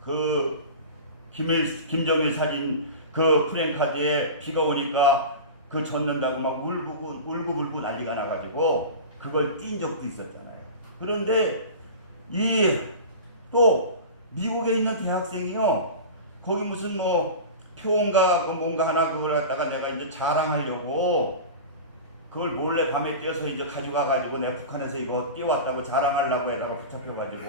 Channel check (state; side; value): inverted; both; correlation -0.31